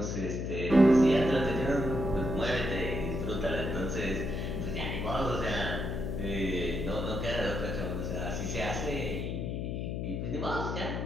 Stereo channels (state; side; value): noise; left; hum, 2 dB below the sound